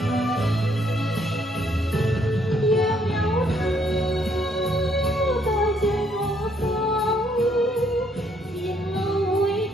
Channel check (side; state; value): both; normal; correlation 0.69